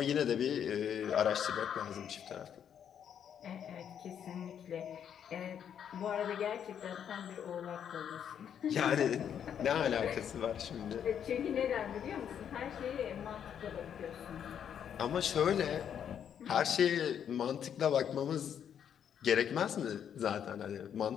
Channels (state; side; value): quieter; right; 8.7 dB